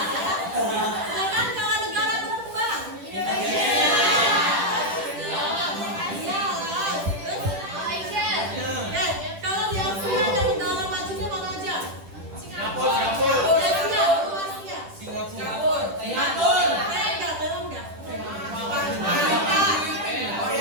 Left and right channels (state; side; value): late; left; 10 ms